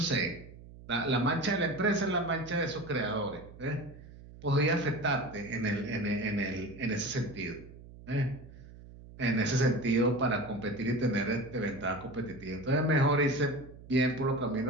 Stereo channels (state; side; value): noise; right; hum, 18 dB below the sound